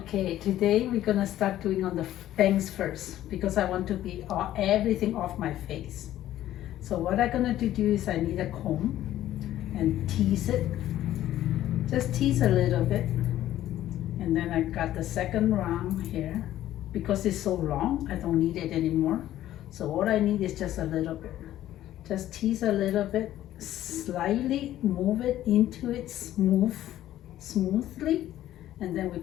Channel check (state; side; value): quieter; right; 13.2 dB